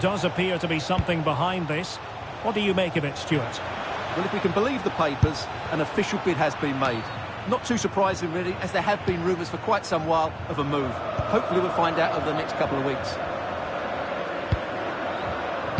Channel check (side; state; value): both; identical; correlation 1.00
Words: appear to be something behind this. What do you make of it, Stuart? Well, if we can believe the papers, an official bid has been made. Not too surprising, really, as there have been rumours for quite some while of a move. Hopefully we'll find out over the next couple of weeks.